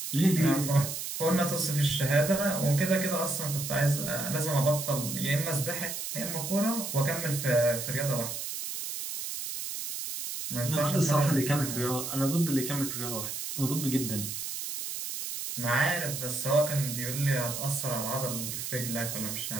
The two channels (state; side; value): noise; right; hiss, 5 dB below the sound